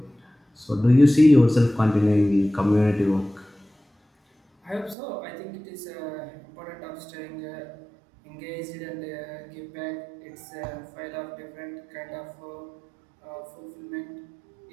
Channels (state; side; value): drops out; left; at 5.0 s